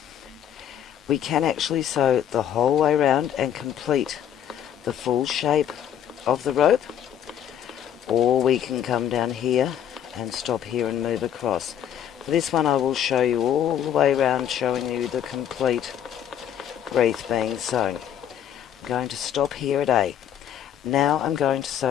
we can actually sew the whole way around and complete the full shape of the rope, or we can come down here and stop here and move across. For this one I will show you all the way around, showing you the complete wreath being sewn. I'm going to stop here at A. Now I'm going to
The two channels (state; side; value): quieter; right; 9.8 dB